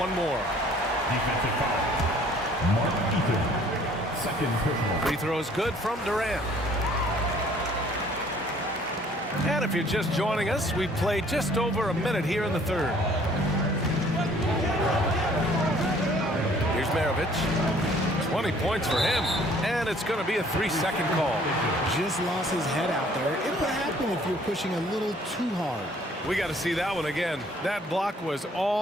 more. Defensive foul. Mark Eaton. Second personal. Free throw is good from Durant. And if you're just joining us, we've played just over a minute here in the third. Here's Maravich. 20 points for him. And it's going to be a 3-second call. Just lost his head out there. It would happen if you're pushing a little too hard. We got to see that one again. That block was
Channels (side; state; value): both; normal; correlation 0.57